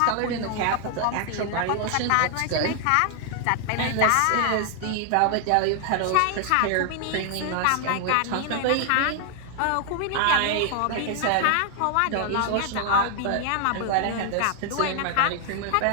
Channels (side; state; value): both; different; correlation 0.00